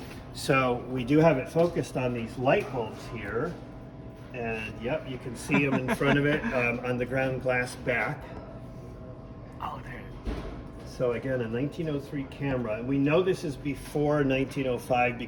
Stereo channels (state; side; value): identical; both; correlation 1.00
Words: So we do have it focused on these light bulbs here. And yep, you can see them in front of it on the ground glass back. Oh, there. So again, a 1903 camera, and we know this is before 1905